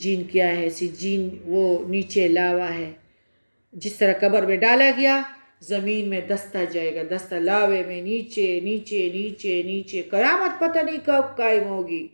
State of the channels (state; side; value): inverted; both; correlation -1.00